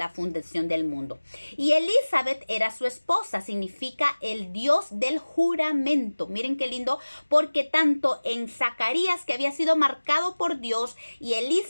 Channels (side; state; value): both; inverted; correlation -1.00